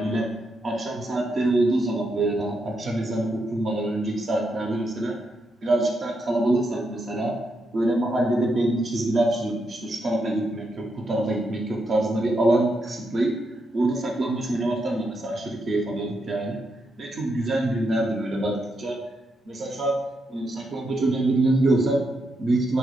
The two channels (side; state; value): both; normal; correlation 0.82